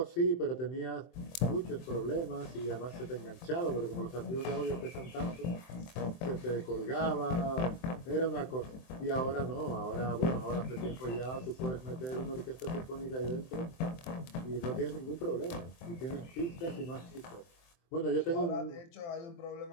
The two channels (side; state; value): right; late; 23 ms